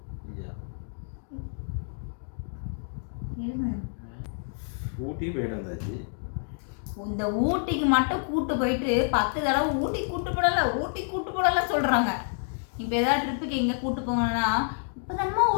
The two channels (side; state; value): right; silent; digital silence